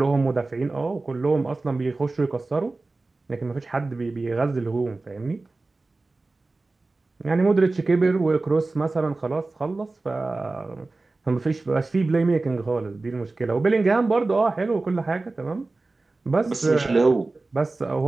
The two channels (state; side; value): quieter; left; 3.4 dB